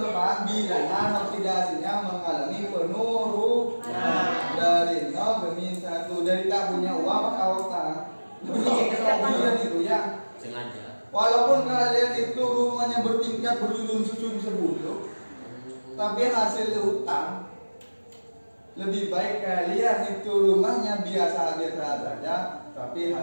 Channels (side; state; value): both; inverted; correlation -1.00